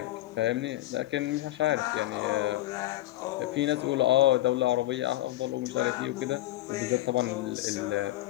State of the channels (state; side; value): quieter; right; 16.1 dB